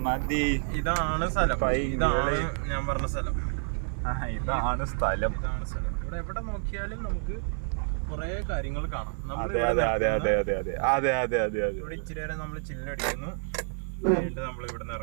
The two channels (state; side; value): silent; left; 59 dB below the other